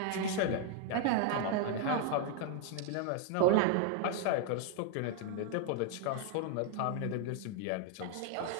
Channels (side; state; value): both; different; correlation 0.00